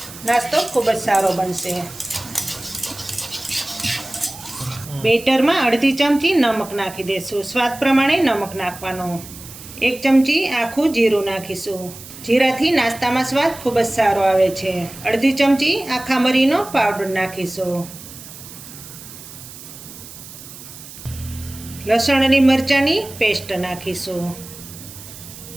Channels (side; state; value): right; noise; hiss, 15 dB below the sound